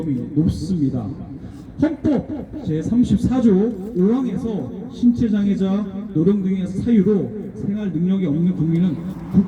높습니다. 헌법 제34조 5항에서 신체장애자, 노령 등의 사유로 생활 능력이 없는 국민은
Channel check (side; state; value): both; identical; correlation 1.00